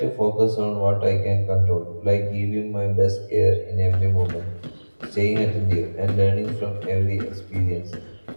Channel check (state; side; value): inverted; both; correlation -1.00